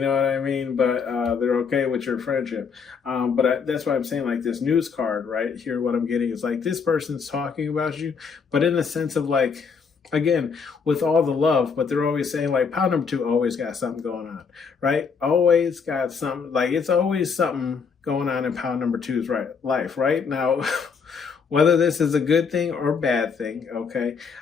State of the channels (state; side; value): quieter; right; 5.8 dB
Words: what I mean? But they're okay with your friendship. But that's why I'm saying like this news card right here, what I'm getting is like this person's talking about you, but in the sense of like, again, with all the love, but they're always saying like pile number 2 always got something going on, right? Always got something, like it's always something going on in pile number 2's life, right? Now, whether this is a good thing or bad thing, okay,